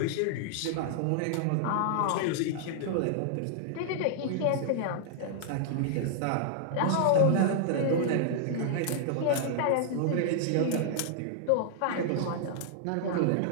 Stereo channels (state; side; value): different; both; correlation -0.01